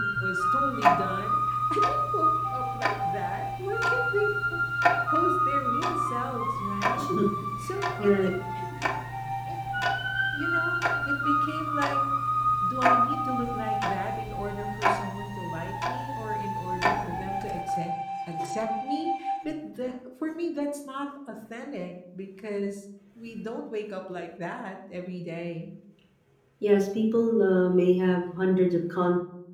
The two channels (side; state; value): both; identical; correlation 1.00